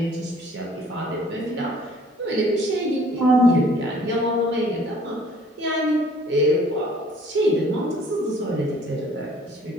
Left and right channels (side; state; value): both; normal; correlation 0.56